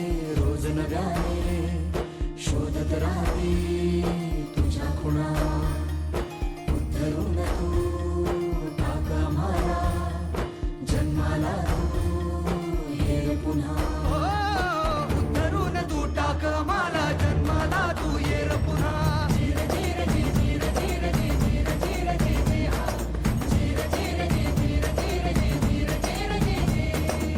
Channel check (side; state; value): both; identical; correlation 1.00